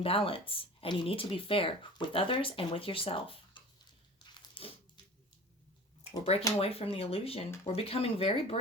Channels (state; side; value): normal; both; correlation 0.39